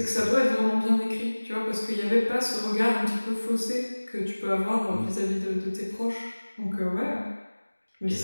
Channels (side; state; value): both; inverted; correlation -1.00